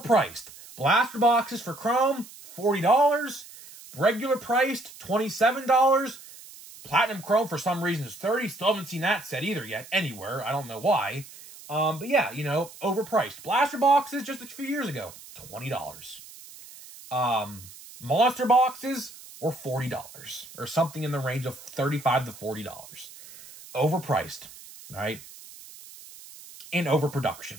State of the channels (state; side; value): noise; right; hiss, 18 dB below the sound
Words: Blaster boxes for Chrome, $40. Regular priced, $27. Platinum Chrome, for some reason, is $30. Still haven't seen that set either yet, anywhere. I don't know why. But yeah, overpriced. Blaster boxes just a few years ago, $20. Monster boxes were $40 or something in the range of $35 to $40. Overpriced, right? And